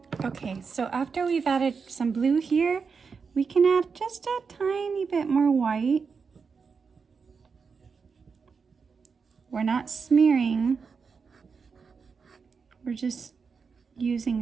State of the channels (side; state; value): left; quieter; 5.4 dB